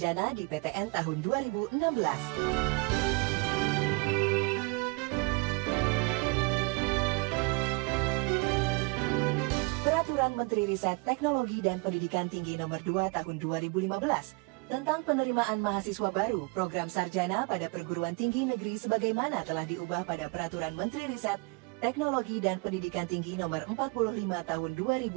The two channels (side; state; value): left; quieter; 29.9 dB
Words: di PTN tahun 2016. Peraturan Menteri Riset Teknologi dan Pendidikan Tinggi Nomor 2 Tahun 2015 tentang penerimaan mahasiswa baru program sarjana pada perguruan tinggi negeri sebagaimana telah diubah pada Peraturan Menteri Riset Teknologi dan Pendidikan Tinggi Nomor 45 Tahun